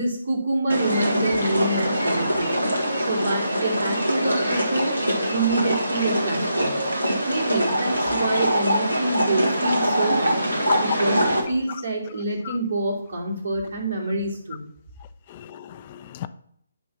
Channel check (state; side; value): inverted; both; correlation -0.80